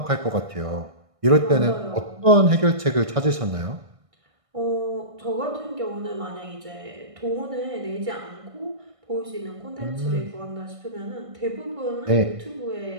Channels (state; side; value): late; left; 1.6 ms